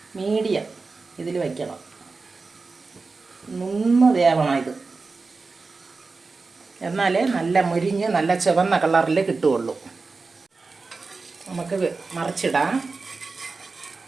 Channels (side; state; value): left; quieter; 4.1 dB